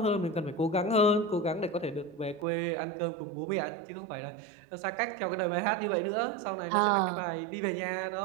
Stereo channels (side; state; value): left; drops out; at 2.5 s